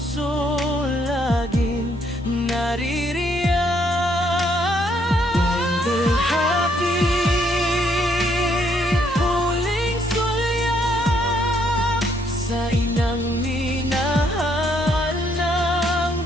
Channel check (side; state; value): both; normal; correlation 0.70